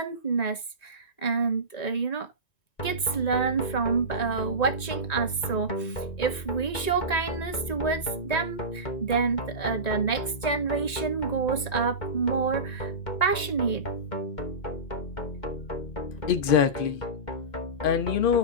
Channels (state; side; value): late; right; 1.9 ms